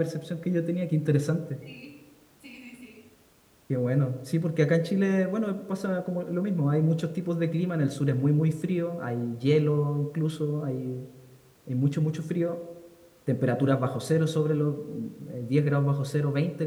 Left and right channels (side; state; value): both; identical; correlation 1.00